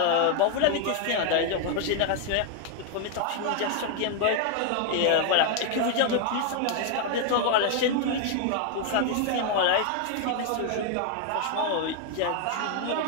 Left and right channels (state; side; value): different; both; correlation 0.00